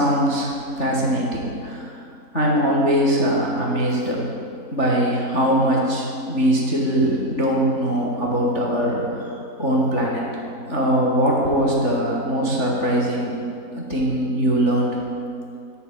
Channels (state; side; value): late; right; 3.4 ms